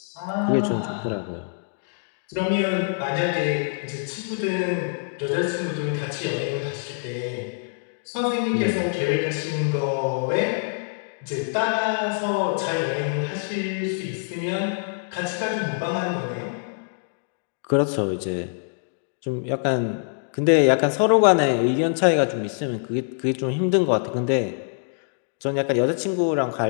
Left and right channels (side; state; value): right; silent; digital silence